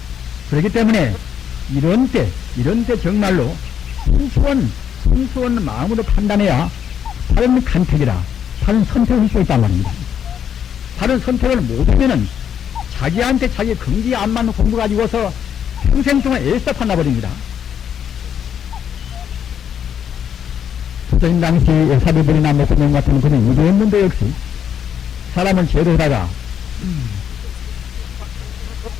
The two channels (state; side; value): quieter; right; 8.6 dB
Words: 그렇기 때문에 이런 때 정말로 순수한 마음으로 판단해야 바른 간택이라 바른 선택을 할 수 있단 말입니다. 바른 선택을 못하면은 자기한테 자기 긍지에 안 맞는 공부 가지고서 평생 동안 애써 판나버립니다. 조선 당시 사비들이나 목사님 같은 그런 이랬는데 역시 사람을 제도하다가